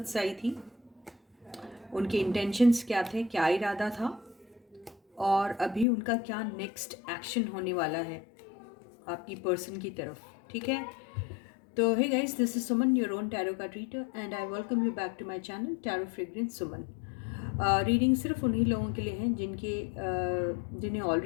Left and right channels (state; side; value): drops out; right; at 5.9 s